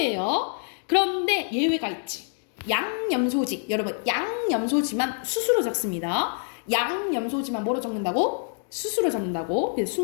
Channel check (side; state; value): right; silent; 55 dB below the other